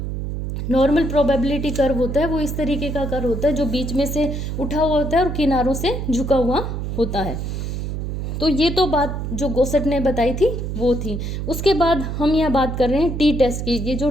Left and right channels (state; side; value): noise; right; hum, 4 dB below the sound